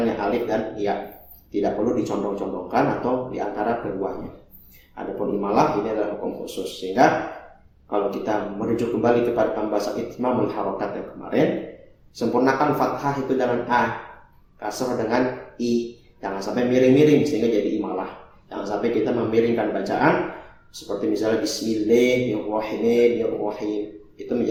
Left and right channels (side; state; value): both; identical; correlation 1.00